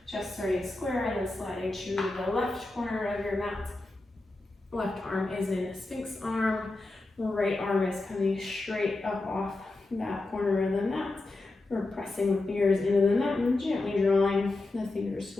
Chest starting square and then sliding to the left corner of your mat. Left arm is in Sphinx arm. Right arm is coming straight up off that corner of the mat. We're pressing the fingers into the mat and gently drawing the fingers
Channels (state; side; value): quieter; right; 3.1 dB